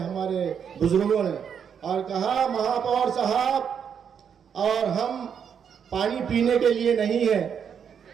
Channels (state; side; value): quieter; left; 7.6 dB